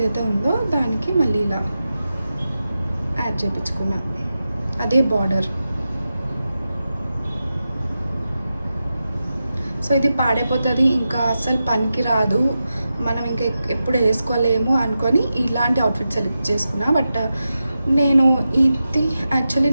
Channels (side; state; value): both; inverted; correlation -0.91